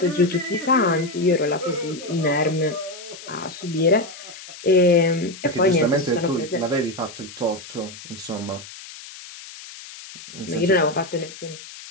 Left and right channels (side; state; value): left; noise; hiss, 15 dB below the sound